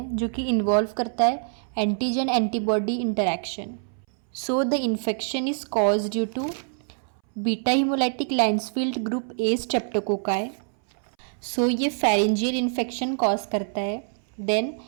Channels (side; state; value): left; silent; 61 dB below the other